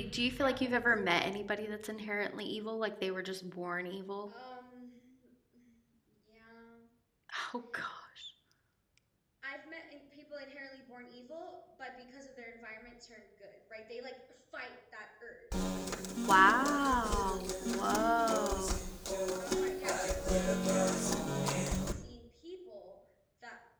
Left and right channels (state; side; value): identical; both; correlation 1.00